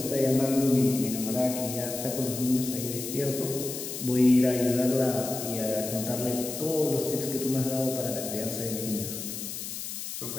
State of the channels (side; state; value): left; noise; hiss, 7 dB below the sound